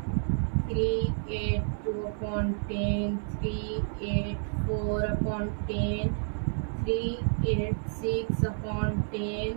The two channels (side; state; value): left; silent; 58 dB below the other